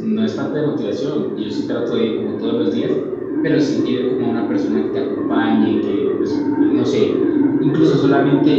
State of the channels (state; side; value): identical; both; correlation 1.00